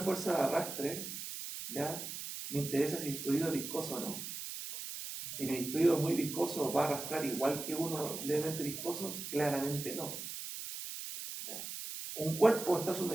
de arrastre, ¿ya? Me interesa si el fluido es viscoso o no. Si el fluido es muy viscoso, ¿va a arrastrar igual que uno levemente viscoso? Claramente no. ¿Ya? Un cuerpo está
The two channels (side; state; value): right; noise; hiss, 7 dB below the sound